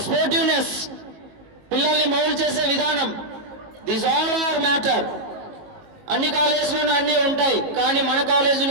స్పోర్టివ్నెస్, పిల్లల్ని మౌల్డ్ చేసే విధానం, దిస్ ఆల్ ఆర్ మ్యాటర్. అన్ని కాలేజీలోనూ అన్నీ ఉంటాయి, కానీ మన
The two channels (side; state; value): left; late; 19 ms